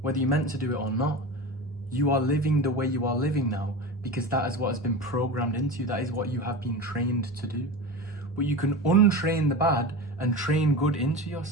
whether you meant to do it or not. You are living the way you are living now because that is what has been programmed into you. That is what you have been trained to do. But you can untrain the bad and train good into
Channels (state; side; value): normal; both; correlation 0.27